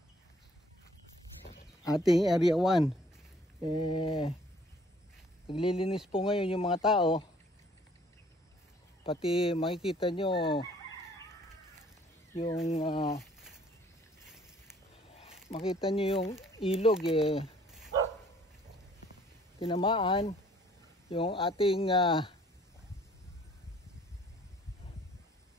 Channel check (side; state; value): both; normal; correlation 0.58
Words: ating Area 1. Naglilinis po ngayon yung mga tao. Pati makikita nyo yung makita nyo yung ilog tinamaan yung ating